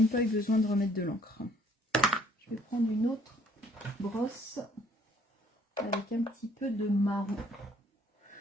pas eu besoin de remettre de l'encre. Je vais prendre une autre brosse avec un petit peu de marron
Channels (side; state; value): both; normal; correlation 0.62